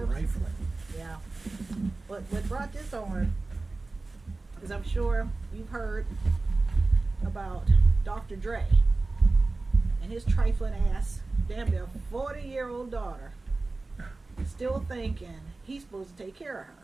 trifling. yeah. What brought this on is I'm sure you've heard about Dr. Dre and his trifling ass, damn near 40-year-old daughter, still thinking he's supposed to take care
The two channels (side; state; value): left; quieter; 3.4 dB